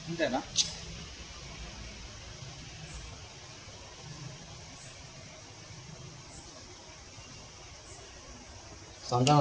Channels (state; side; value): identical; both; correlation 1.00